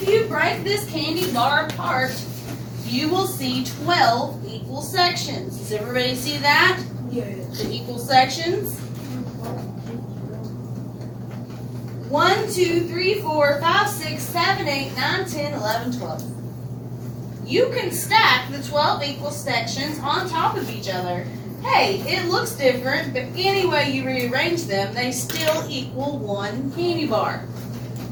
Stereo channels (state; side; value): identical; both; correlation 1.00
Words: you break this candy bar apart, you will see 12 equal sections. Does everybody see that? Yeah. The equal sections. 1, 2, 3, 4, 5, 6, 7, 8, 9, 10, 11, 12. You can stack the 12 equal sections on top of each other. Hey, it looks different, but any way you rearrange them, they still equal 1 candy bar.